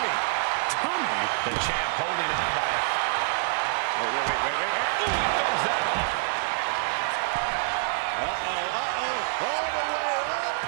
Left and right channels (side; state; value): left; silent; digital silence